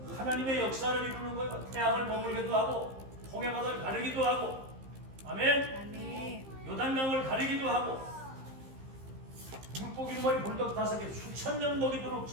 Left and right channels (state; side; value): late; left; 15 ms